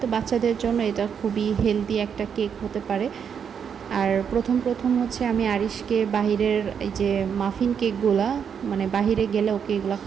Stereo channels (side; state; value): left; quieter; 7.4 dB